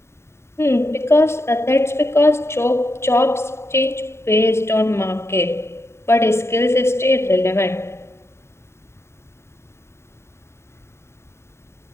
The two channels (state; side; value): late; right; 0.13 ms